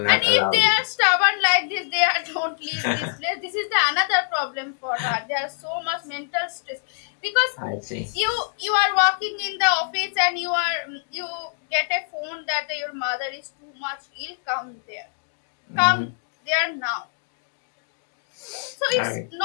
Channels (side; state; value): right; silent; digital silence